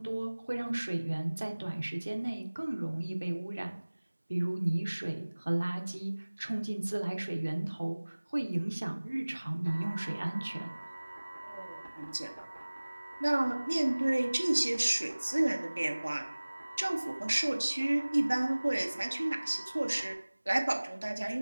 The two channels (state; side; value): inverted; both; correlation -1.00